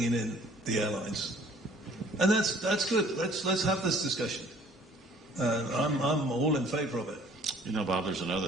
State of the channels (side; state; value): both; normal; correlation 0.55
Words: in the airlines. And that's good. Let's have this discussion. I'm all in favor of it. You know, Bob, there's another